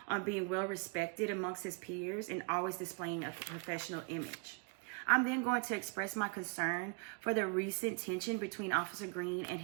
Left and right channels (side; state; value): left; quieter; 35.9 dB